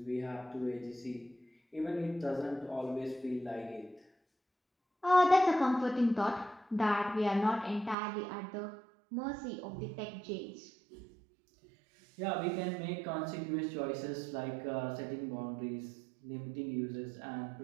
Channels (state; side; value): drops out; left; at 8.0 s